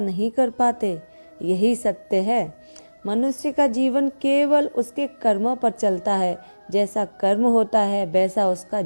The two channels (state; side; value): inverted; both; correlation -1.00